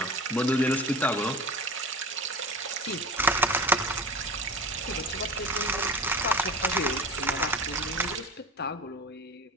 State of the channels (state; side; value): normal; both; correlation 0.33